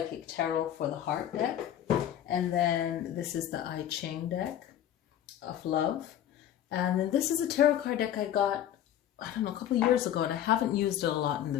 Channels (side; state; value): right; quieter; 10.9 dB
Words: tarot for the heart deck. And then this is the I Ching deck of love. And then this is a tarot card deck I got, I don't know, a couple of years ago, and I haven't used it a lot in the